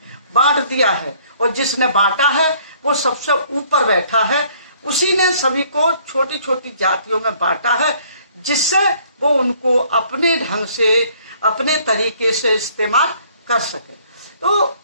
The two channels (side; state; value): both; inverted; correlation -0.60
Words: बांट दिया है और जिसने बांटा है वो सबसे ऊपर बैठा है। उसी ने सभी को छोटी छोटी जातियों में बांटा है जिससे वो उनको अपने ढंग से, अपने तरीके से इस्तेमाल कर सके। तो